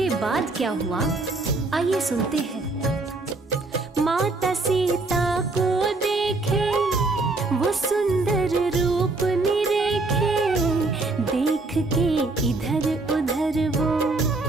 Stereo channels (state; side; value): quieter; left; 3.3 dB